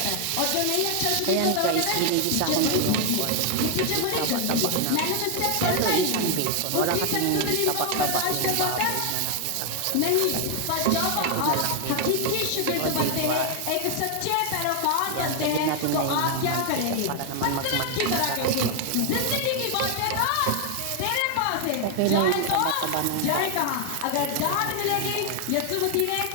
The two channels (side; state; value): both; different; correlation 0.00